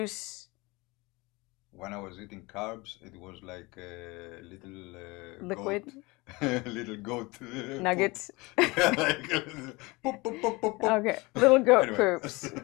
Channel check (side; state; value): right; quieter; 24.1 dB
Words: When I was eating carbs, it was like a little liquid, goat, little goat nuggets. Poop, poop, poop, poop, poop. Okay, little goat Anyway. poops.